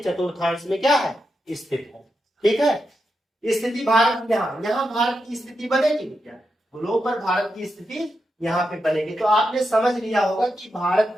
चतुर्थांश में क्या है, स्थित है। ठीक है, स्थिति भारत यहाँ भारत की स्थिति बनेगी क्या, गोलोक पर भारत की स्थिति यहाँ पे बनेगी। तो आपने समझ लिया होगा कि भारत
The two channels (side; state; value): both; normal; correlation 0.87